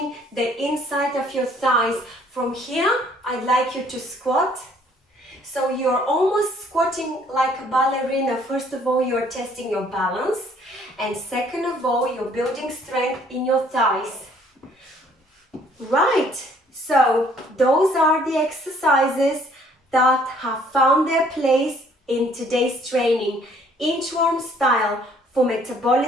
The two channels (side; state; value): both; normal; correlation 0.61